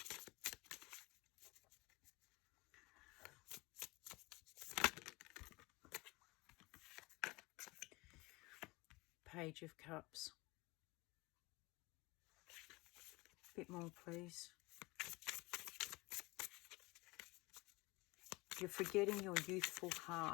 Page of Cups. A bit more, please. You're forgetting your youthful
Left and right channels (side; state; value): right; quieter; 23.3 dB